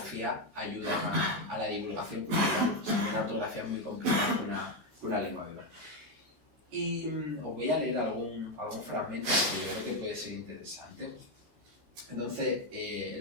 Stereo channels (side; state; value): left; late; 13 ms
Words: ayudan a la divulgación cultural. O sea, una ortografía es muy complicada que una lengua viva. Y os voy a leer algún fragmento que yo creo que puede ser interesante. Entonces,